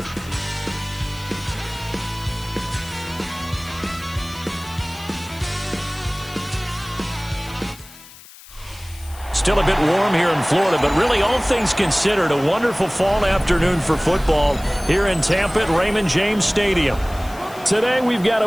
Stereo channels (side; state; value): left; noise; hiss, 20 dB below the sound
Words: Still a bit warm here in Florida, but really all things considered, a wonderful fall afternoon for football here in Tampa at Raymond James Stadium. Today we've got a